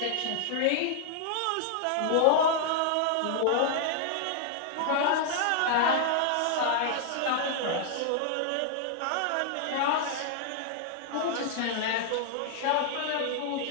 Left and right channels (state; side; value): different; both; correlation -0.01